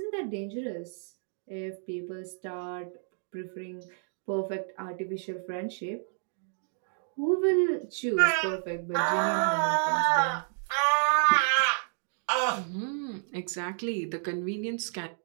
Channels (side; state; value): left; silent; 58 dB below the other